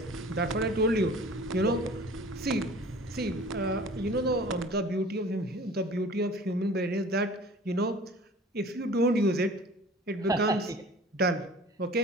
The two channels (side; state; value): both; normal; correlation 0.45